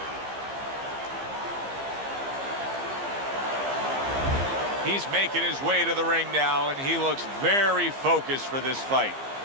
He's making his way to the ring now, and he looks very focused for this fight.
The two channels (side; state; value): left; late; 15 ms